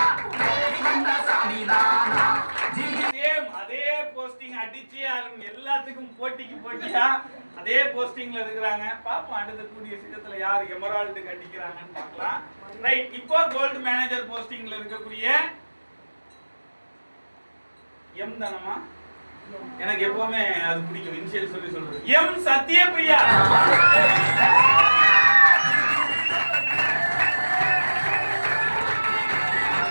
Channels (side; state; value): both; inverted; correlation -1.00